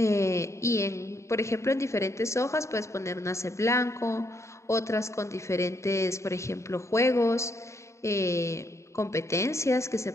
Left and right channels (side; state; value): right; late; 0.14 ms